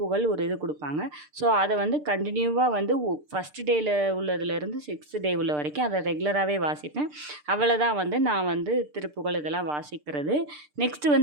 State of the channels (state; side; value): late; left; 6.7 ms